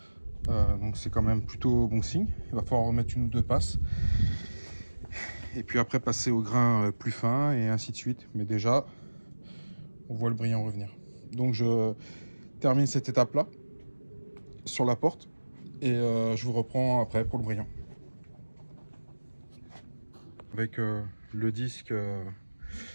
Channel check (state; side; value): inverted; both; correlation -1.00